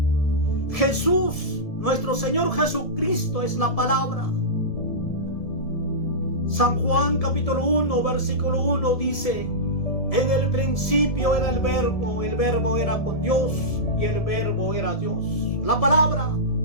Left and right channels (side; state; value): right; late; 1.7 ms